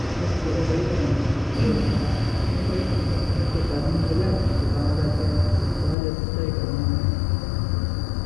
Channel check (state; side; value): drops out; right; at 6.0 s